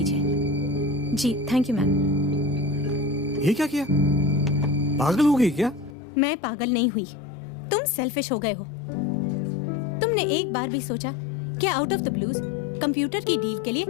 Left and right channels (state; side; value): drops out; right; at 6.0 s